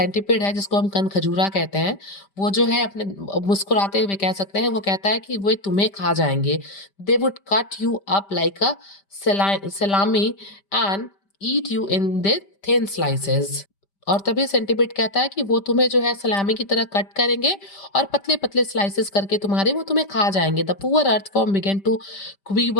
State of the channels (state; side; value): late; right; 5.1 ms